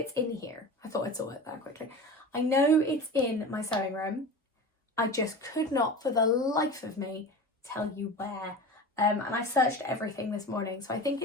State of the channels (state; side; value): normal; both; correlation 0.32